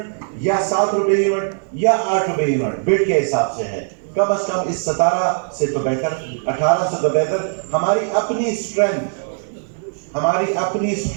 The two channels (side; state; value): left; silent; 60 dB below the other